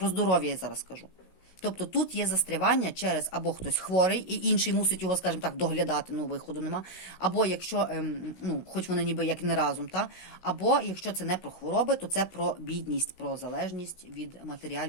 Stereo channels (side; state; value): right; late; 16 ms